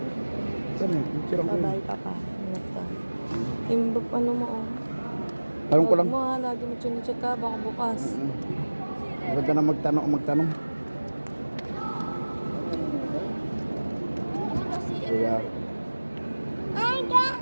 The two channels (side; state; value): both; inverted; correlation -1.00